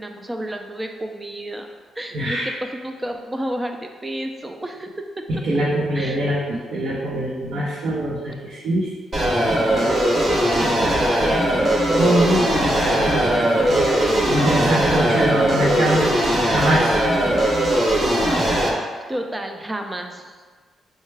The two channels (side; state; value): both; normal; correlation 0.82